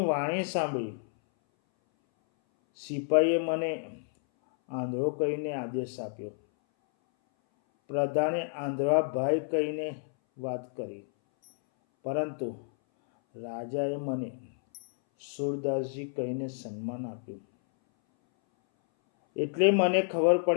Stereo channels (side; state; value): right; silent; 58 dB below the other